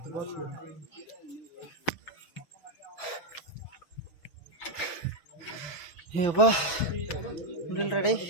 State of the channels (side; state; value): right; late; 6.1 ms